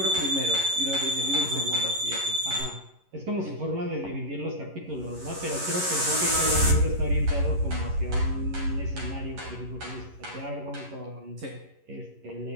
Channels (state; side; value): late; left; 11 ms